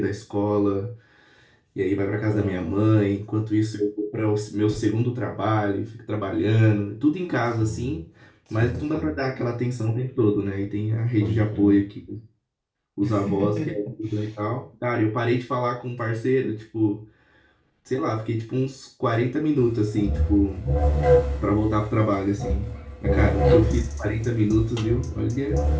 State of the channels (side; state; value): both; identical; correlation 1.00